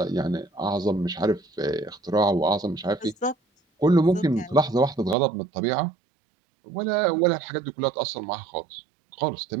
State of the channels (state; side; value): drops out; left; at 5.2 s